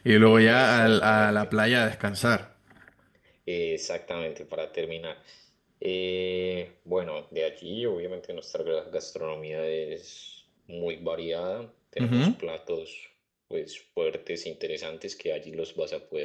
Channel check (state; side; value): identical; both; correlation 1.00